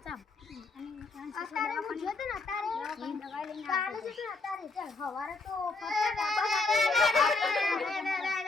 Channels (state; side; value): quieter; right; 3.6 dB